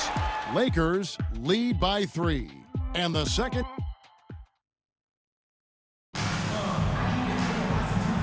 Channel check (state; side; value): identical; both; correlation 1.00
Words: Lakers lead by 3. And the second.